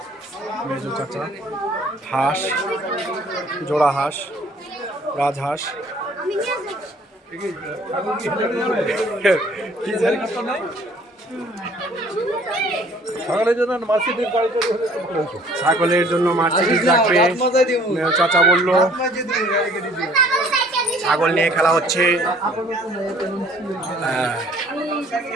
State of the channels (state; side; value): normal; both; correlation 0.56